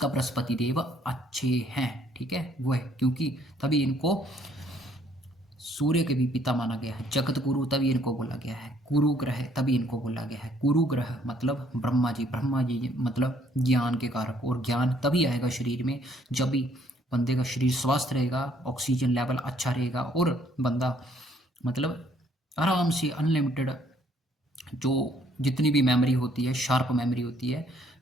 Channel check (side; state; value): both; normal; correlation 0.64